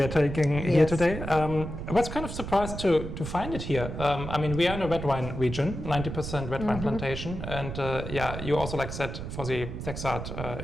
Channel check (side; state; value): right; noise; rumble, 7 dB below the sound